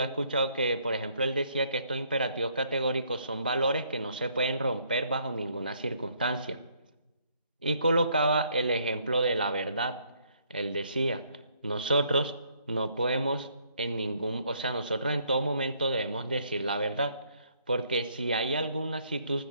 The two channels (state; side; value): inverted; both; correlation -0.67